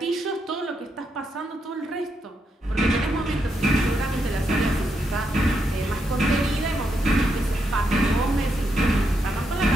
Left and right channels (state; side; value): normal; both; correlation 0.81